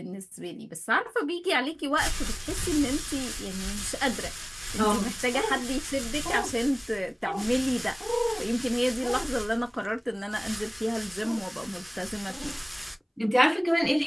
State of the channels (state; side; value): identical; both; correlation 1.00